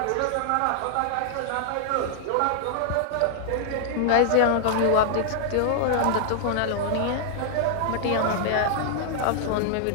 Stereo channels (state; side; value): different; both; correlation -0.01